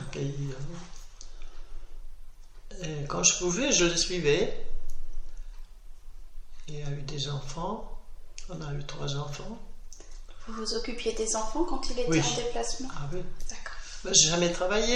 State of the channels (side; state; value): both; identical; correlation 1.00